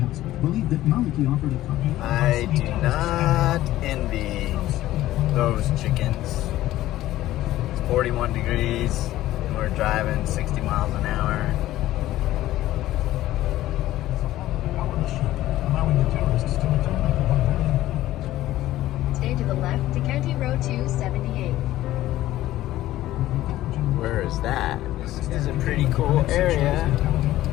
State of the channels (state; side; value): quieter; right; 14.9 dB